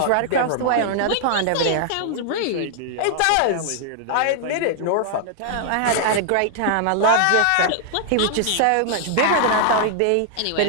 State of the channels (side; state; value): both; different; correlation 0.00